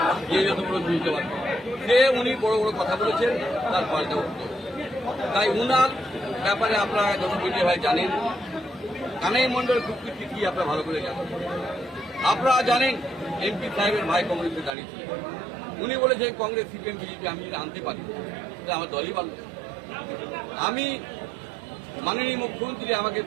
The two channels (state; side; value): drops out; left; at 14.8 s